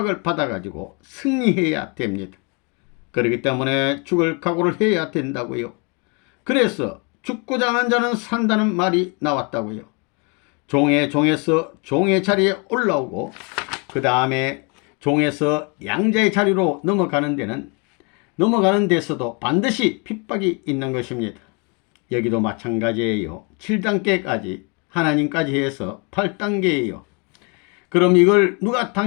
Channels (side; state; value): right; quieter; 32.9 dB